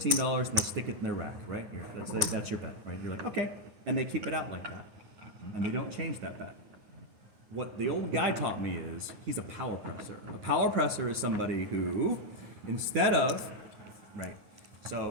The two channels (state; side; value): late; left; 9.4 ms